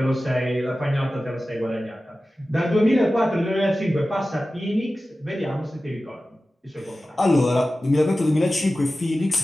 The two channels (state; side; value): normal; both; correlation 0.95